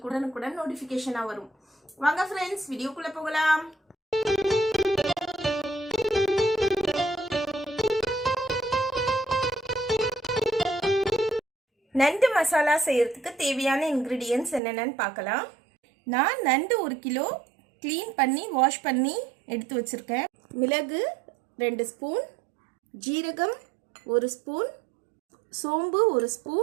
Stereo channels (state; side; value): drops out; left; at 14.6 s